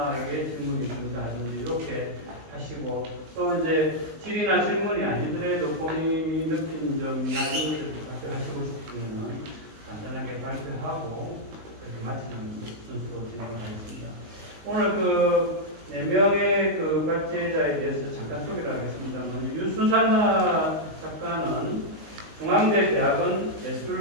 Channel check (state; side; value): late; left; 19 ms